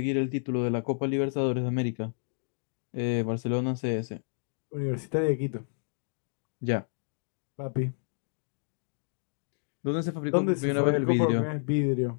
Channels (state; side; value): silent; right; digital silence